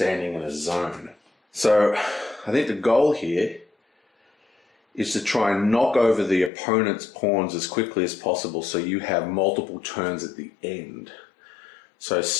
in a zone. So I think the goal here is to try and knock over the opponent's pawns as quickly as possible so you have multiple turns at the end. So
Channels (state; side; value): drops out; right; at 6.5 s